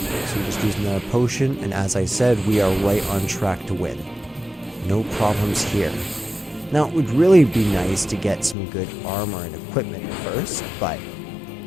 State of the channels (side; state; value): right; drops out; at 8.6 s